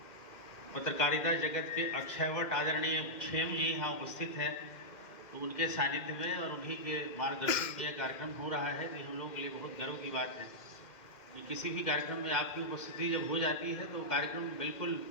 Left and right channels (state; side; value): late; right; 2.1 ms